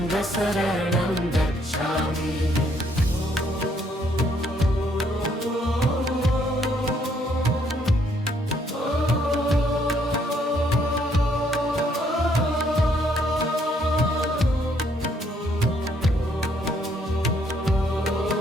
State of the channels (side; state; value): both; normal; correlation 0.68